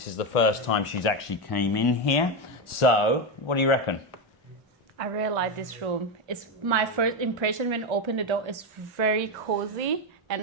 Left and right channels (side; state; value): both; normal; correlation 0.10